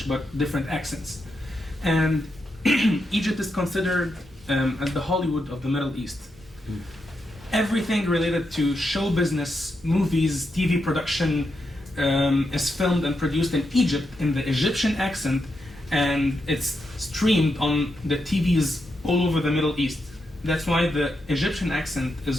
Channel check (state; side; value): normal; both; correlation 0.84